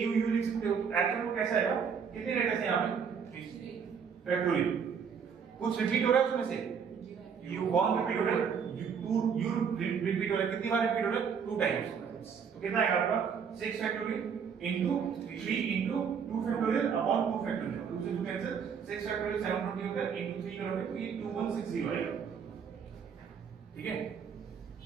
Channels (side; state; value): left; quieter; 6.7 dB